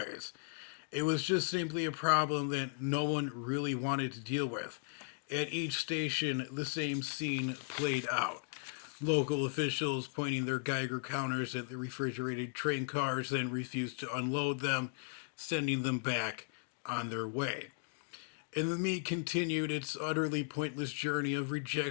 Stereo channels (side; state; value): right; silent; digital silence